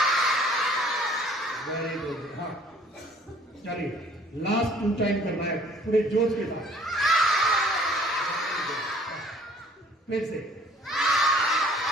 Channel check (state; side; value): normal; both; correlation 0.56